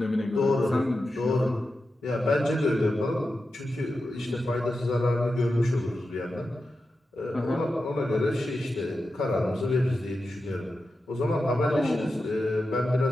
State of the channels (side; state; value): both; normal; correlation 0.91